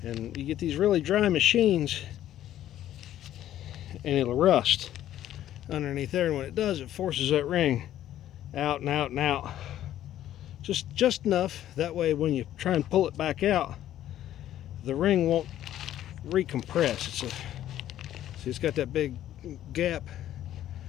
and you get these really dry machines and it'll rust underneath there, and when it does, it forces that ring out and out and out, just enough that way when you try and pull it back out, the ring won't recompress. See, it's got that big gap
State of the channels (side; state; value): right; quieter; 12.3 dB